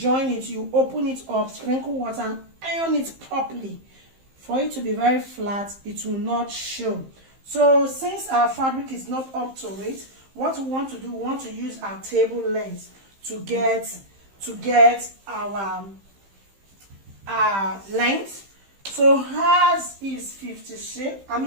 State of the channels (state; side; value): late; left; 15 ms